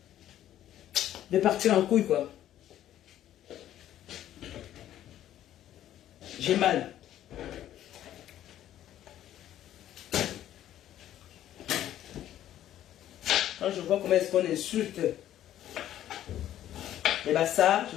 partir en couille, quoi. J'ai mal. Quand je vois comment est-ce qu'on insulte les Bassas, je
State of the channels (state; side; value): quieter; right; 12.1 dB